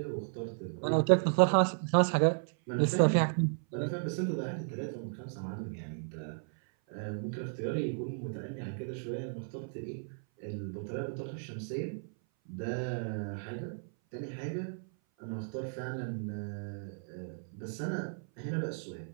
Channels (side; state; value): left; silent; 55 dB below the other